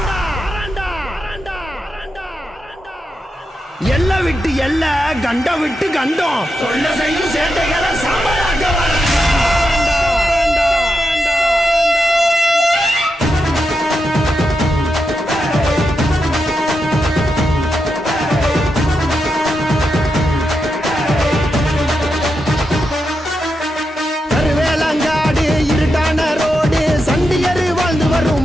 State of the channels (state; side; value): normal; both; correlation 0.86